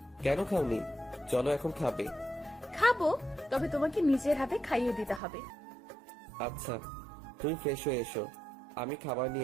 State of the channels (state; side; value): drops out; left; at 5.2 s